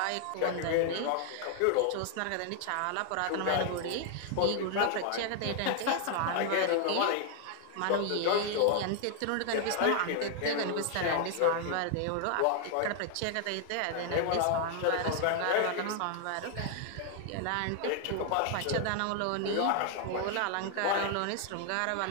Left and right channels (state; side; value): different; both; correlation 0.00